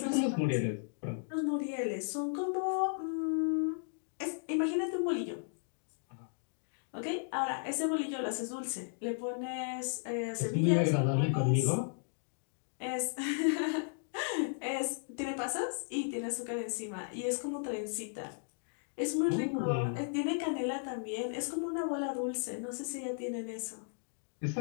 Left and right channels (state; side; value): silent; right; digital silence